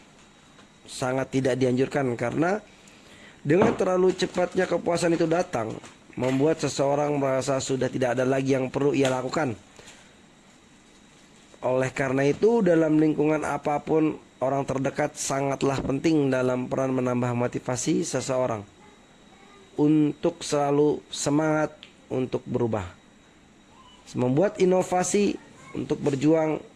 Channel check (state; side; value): identical; both; correlation 1.00